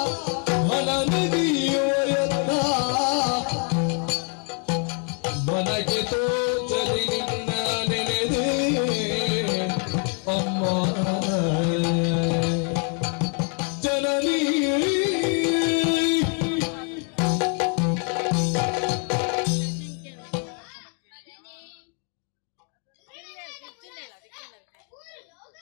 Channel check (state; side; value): quieter; right; 39.4 dB